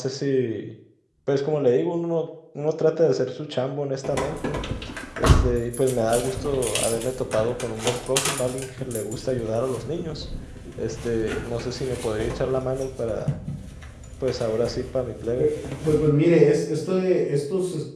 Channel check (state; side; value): identical; both; correlation 1.00